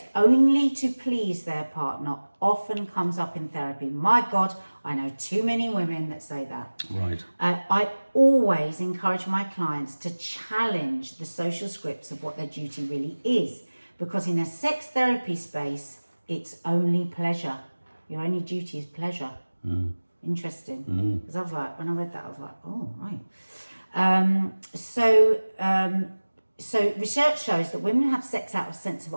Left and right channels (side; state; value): both; inverted; correlation -1.00